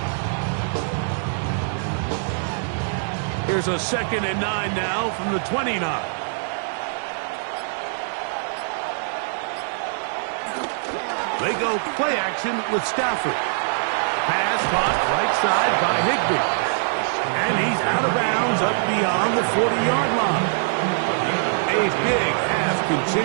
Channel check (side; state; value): left; silent; digital silence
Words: 9. Here's a 2nd and 9 now from the 29. They go play action with Stafford. Pass caught right side by Higbee. And he's out of bounds up beyond the 40-yard line. A big half